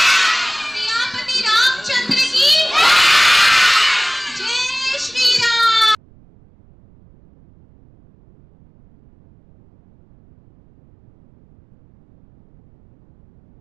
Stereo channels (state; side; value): noise; right; rumble, 29 dB below the sound